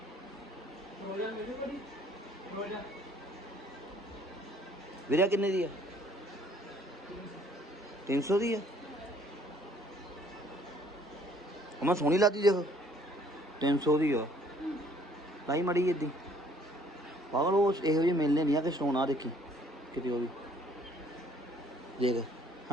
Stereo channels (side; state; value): both; normal; correlation 0.60